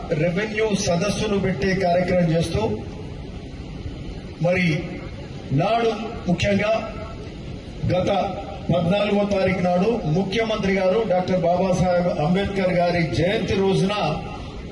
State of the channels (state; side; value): identical; both; correlation 1.00